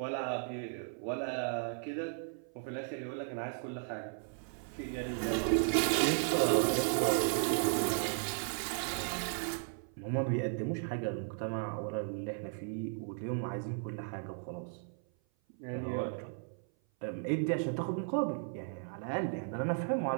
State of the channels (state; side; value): silent; left; 54 dB below the other